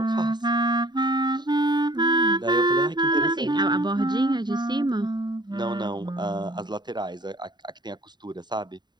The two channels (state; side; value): late; left; 0.21 ms